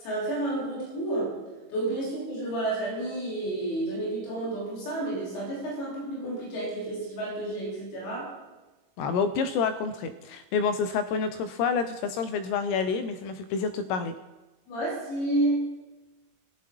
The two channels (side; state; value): right; late; 22 ms